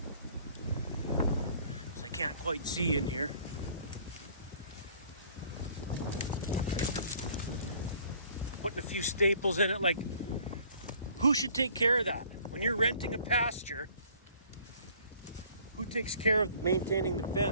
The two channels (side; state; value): both; inverted; correlation -0.55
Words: Because I can't quite see in here. Putting a few staples in it, like, who should take care of that? When you're renting a pasture, who takes care of maintaining the